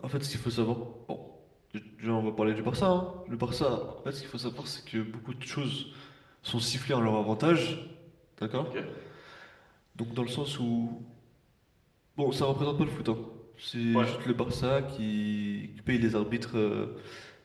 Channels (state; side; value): identical; both; correlation 1.00